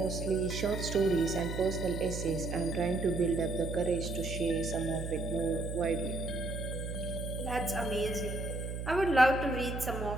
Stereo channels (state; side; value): noise; right; hum, 5 dB below the sound